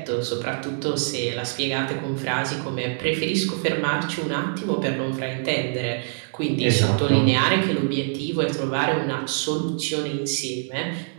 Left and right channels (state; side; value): silent; left; digital silence